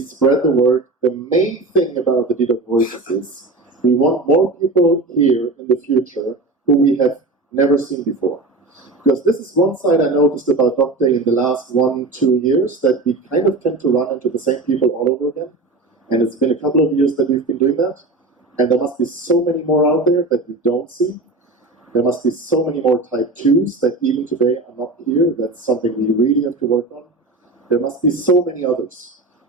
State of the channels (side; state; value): left; quieter; 3.0 dB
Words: spread the word. The main thing about the dedoc voices is we want more people here in the future who we have never seen before. Because this is one side I noticed about docday in the last 1-2 years, that we kind of tend to run into the same people all over again. And it's been a couple of years that we've been doing that. And there must be so many more out there that we don't see. There must be so many more type 2s that even today are not here. That's something we really have to work on. There must be so many others.